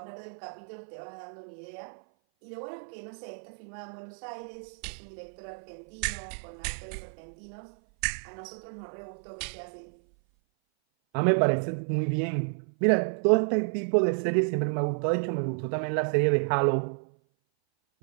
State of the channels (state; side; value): silent; left; 56 dB below the other